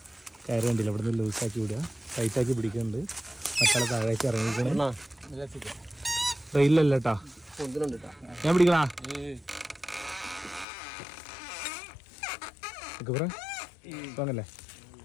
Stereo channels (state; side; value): drops out; right; at 10.7 s